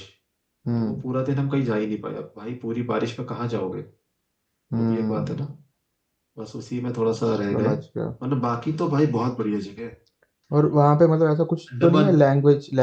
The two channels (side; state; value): both; identical; correlation 1.00